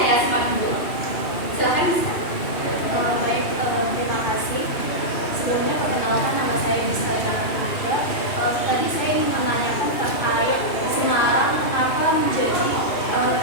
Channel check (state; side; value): late; right; 2.7 ms